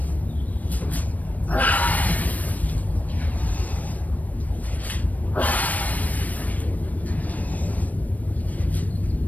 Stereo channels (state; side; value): late; right; 0.075 ms